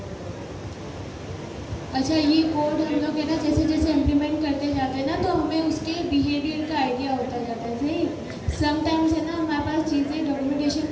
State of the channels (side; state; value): both; identical; correlation 1.00